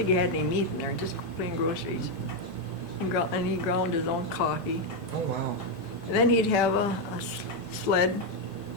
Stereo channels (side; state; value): right; late; 1.0 ms